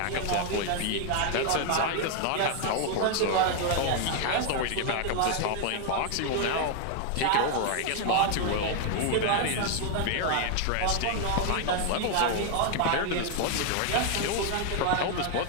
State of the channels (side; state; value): both; different; correlation 0.00